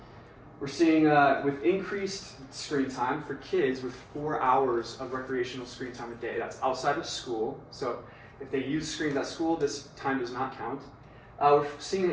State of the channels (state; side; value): identical; both; correlation 1.00